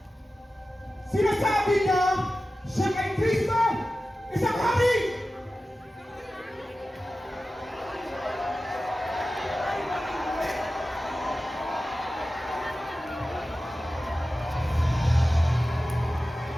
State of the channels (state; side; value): normal; both; correlation 0.94